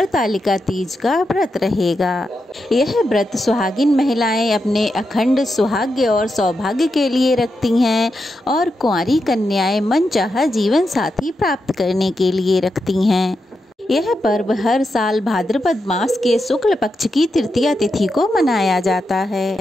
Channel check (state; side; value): normal; both; correlation 0.86